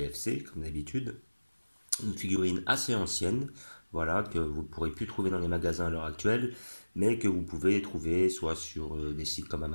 comme d'habitude. Une figurine assez ancienne, voilà, que vous ne pourrez plus trouver dans les magasins à l'heure actuelle, mais que vous pouvez trouver soit sur des sites comme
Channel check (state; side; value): inverted; both; correlation -1.00